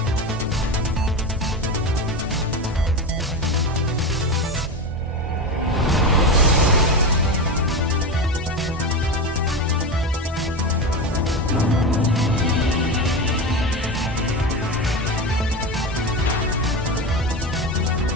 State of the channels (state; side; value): normal; both; correlation 0.20